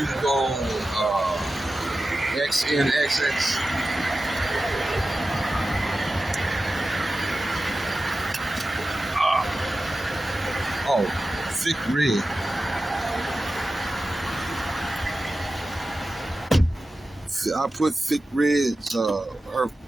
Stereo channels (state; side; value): normal; both; correlation 0.94